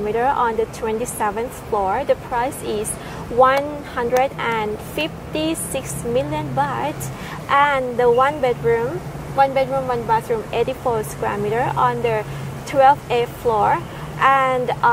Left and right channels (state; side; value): identical; both; correlation 1.00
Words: on the 27th floor. The price is 156 million baht, and the one bedroom, one bathroom, 84 square meter on the 12th floor, and